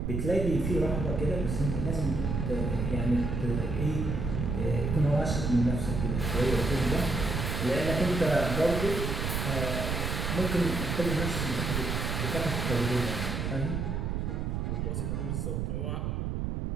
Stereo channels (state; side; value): noise; right; rumble, 1 dB below the sound